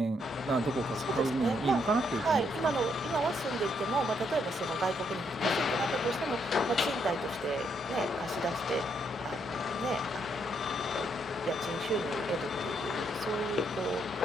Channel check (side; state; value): both; normal; correlation 0.74